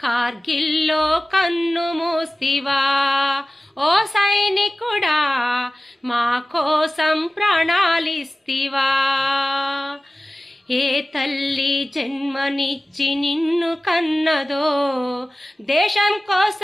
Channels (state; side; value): normal; both; correlation 0.97